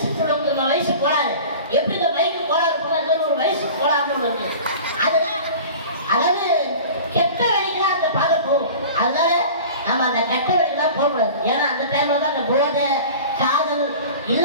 சொல்லுங்க, வயசு கோளாறு எப்படி இந்த மைக்கு கோளாறு போனாலும் ஒரு வயசு கோளாறுன்னு ஒன்று இருக்கு. அதுதான் அதாவது கெட்ட வழிக்கெல்லாம் அந்த பாதை போகும். அதனால நம்ம அந்த கெட்ட வழிக்கெல்லாம் போகக்கூடாது. ஏன்னா அந்த டைம்ல தான் அந்த போதை காதல்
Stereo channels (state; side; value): inverted; both; correlation -0.39